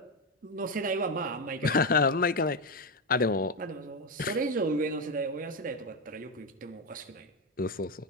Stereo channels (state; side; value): normal; both; correlation 0.10